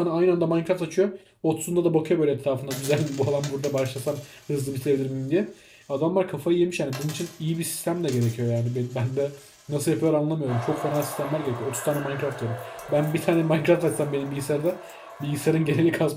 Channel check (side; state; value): both; identical; correlation 1.00